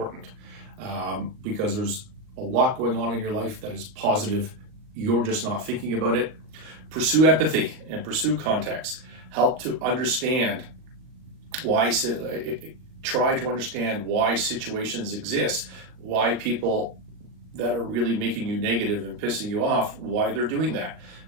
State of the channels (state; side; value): late; left; 39 ms